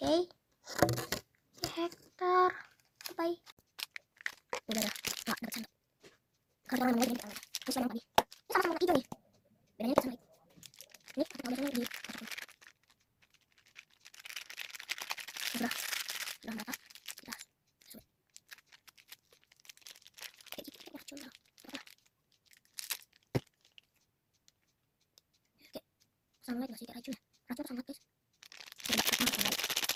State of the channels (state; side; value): identical; both; correlation 1.00